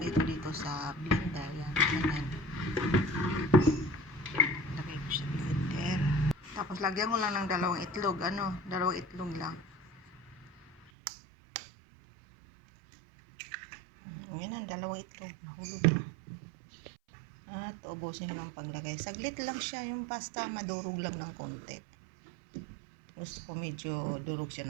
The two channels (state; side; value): drops out; left; at 10.9 s